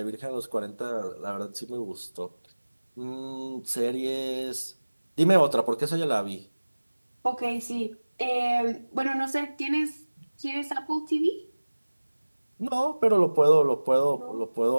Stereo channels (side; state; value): both; inverted; correlation -1.00